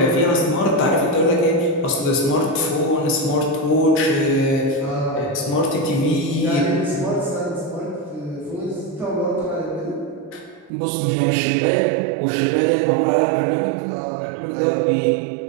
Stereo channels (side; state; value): left; drops out; at 10.7 s